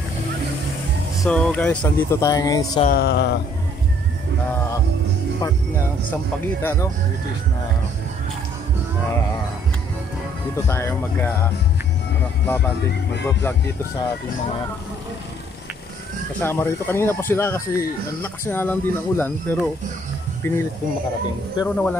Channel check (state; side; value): normal; both; correlation 0.62